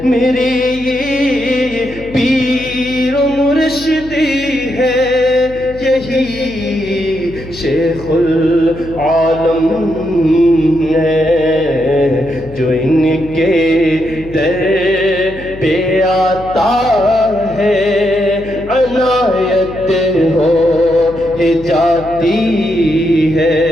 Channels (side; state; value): left; noise; hum, 16 dB below the sound